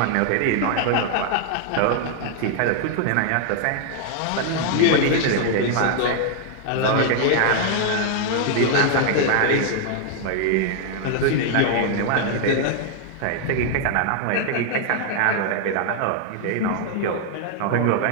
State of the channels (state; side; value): different; both; correlation 0.00